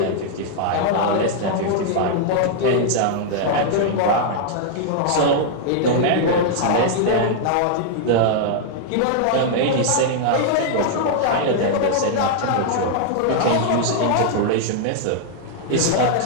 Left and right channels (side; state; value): both; different; correlation -0.01